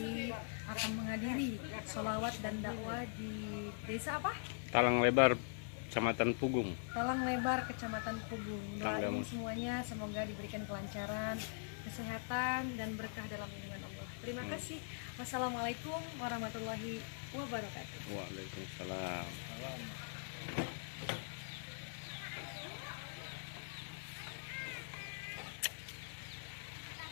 akan menghadiri sholawat dan dakwah di desa apa? Talang Lebar, Kecamatan Pugung. Talang Lebar, Kecamatan Pugung. Doain semuanya semoga diberikan kelancaran, kesehatan, dan berkah dalam lindungan Allah. Terima kasih. Wassalamualaikum warahmatullahi wabarakatuh. Waalaikumsalam.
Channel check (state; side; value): silent; right; digital silence